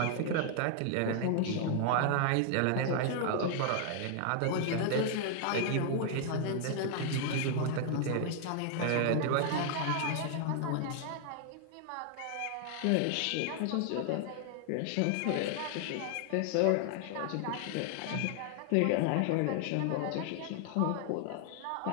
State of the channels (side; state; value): both; different; correlation 0.00